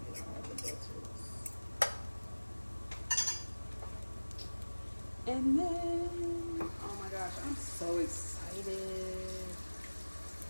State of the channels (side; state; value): both; inverted; correlation -1.00